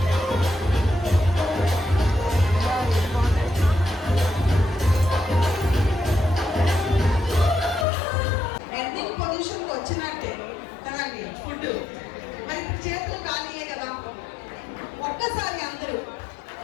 ఎండింగ్ పొజిషన్కి వచ్చినట్టే కదండి ఫుడ్. మరి ఇప్పుడు చేతులు ఖాళీయే కదా. ఒక్కసారి అందరూ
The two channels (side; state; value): right; drops out; at 7.9 s